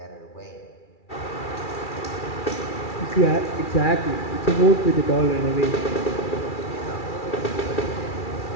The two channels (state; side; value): late; right; 2.3 ms